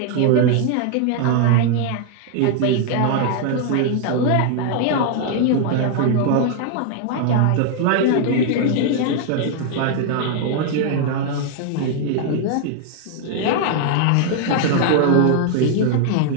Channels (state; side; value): different; both; correlation 0.00